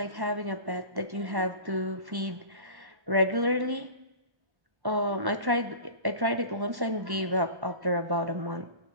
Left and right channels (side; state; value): left; late; 1.1 ms